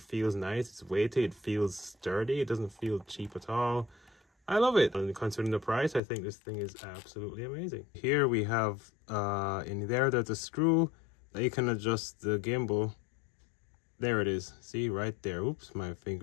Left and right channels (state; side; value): drops out; right; at 6.0 s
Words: feels nice, it's weighty, it feels sturdy, it doesn't feel cheap at all. I love it. And considering the price, I think this thing is absolutely amazing. Here we have, in there's a screw that you can adjust the gimbal. There it is. See, right there. Oops, my